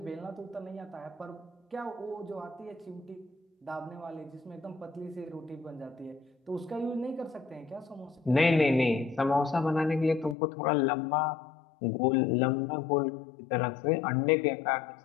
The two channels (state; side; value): drops out; right; at 10.4 s